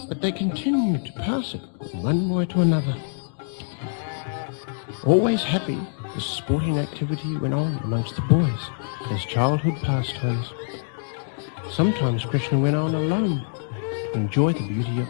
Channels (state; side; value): silent; right; digital silence